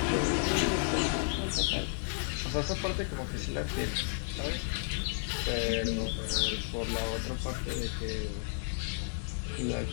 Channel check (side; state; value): right; silent; digital silence